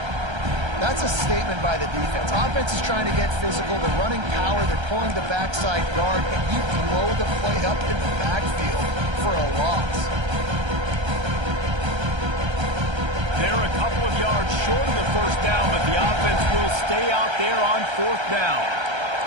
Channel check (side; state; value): left; late; 1.3 ms